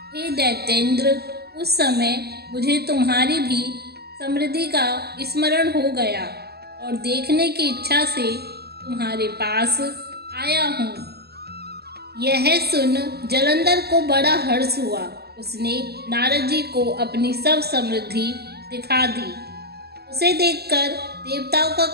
हे दैत्येंद्र, उस समय मुझे तुम्हारी भी समृद्धि का स्मरण हो गया और देखने की इच्छा से तुम्हारे पास आया हूँ। यह सुन जलंधर को बड़ा हर्ष हुआ। उसने नारद जी को अपनी सब समृद्धि दिखा दी। उसे देखकर देवताओं का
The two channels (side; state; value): left; late; 0.47 ms